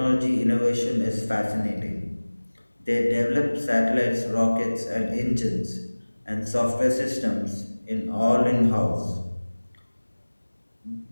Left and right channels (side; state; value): both; inverted; correlation -1.00